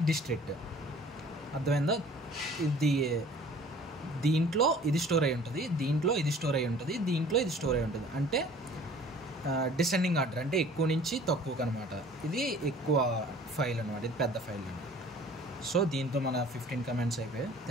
డిస్ట్రిక్ట్. అర్థమైందా? దీంట్లో ఇది స్టోర్ అయి ఉంటుంది, దీంట్లో ఇది స్టోర్ అయి ఉంటుంది, దీంట్లో ఇది స్టోర్ అయి ఉంటుంది. అంటే డిసెండింగ్ ఆర్డర్, అంటే ఎక్కువ నుంచి తక్కువకి అనమాట. ఇది ఎక్కువ ఫైల్ అనమాట, ఇది పెద్ద ఫైల్ అనమాట. సో దీంతో మన 15 కమెంట్స్ అయిపోయాయి.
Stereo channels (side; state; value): both; normal; correlation 0.50